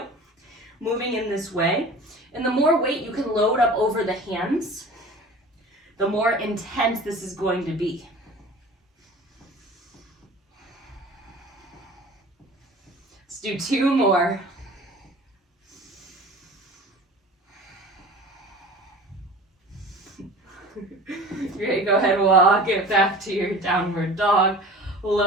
moving in this way. And the more weight you can load up over the hands, the more intense this is going to be. Let's do 2 more. Great, go ahead, walk it back to your downward dog.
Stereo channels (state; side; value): normal; both; correlation 0.40